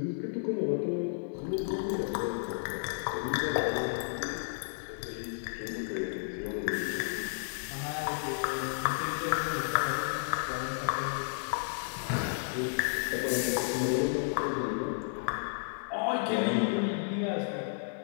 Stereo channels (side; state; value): right; silent; 56 dB below the other